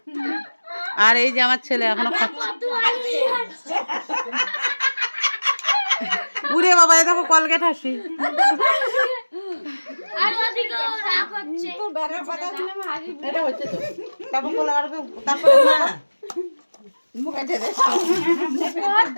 আর এই যে আমার ছেলে এখনো খাচ্ছে। উড়ে বাবা, এই দেখো কলগেট হাসি। এটা হচ্ছে তো, তারপর বলে আর তারপর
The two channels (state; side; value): inverted; both; correlation -1.00